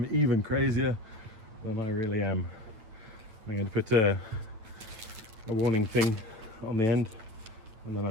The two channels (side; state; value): left; late; 9.0 ms